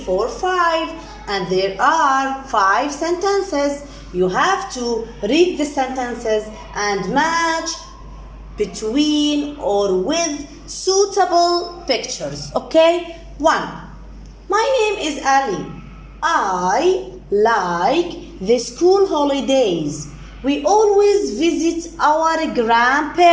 5. And there are 5 sentences. You have to read the sentences and match between or with suitable pictures. Okay? 1. My name is Ali. I like the school holidays. We always visit our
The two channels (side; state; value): both; identical; correlation 1.00